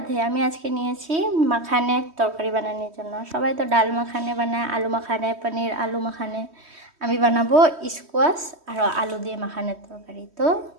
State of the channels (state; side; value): late; left; 3.1 ms